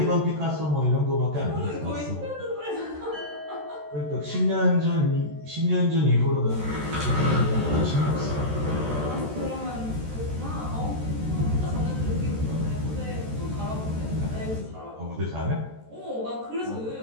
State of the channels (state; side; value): late; left; 14 ms